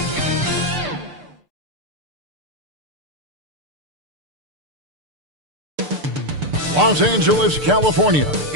Los Angeles, California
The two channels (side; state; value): left; late; 6.8 ms